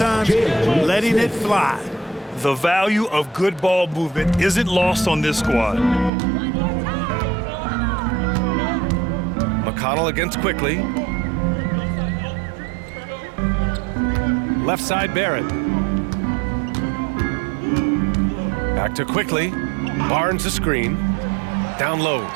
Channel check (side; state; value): left; drops out; at 6.1 s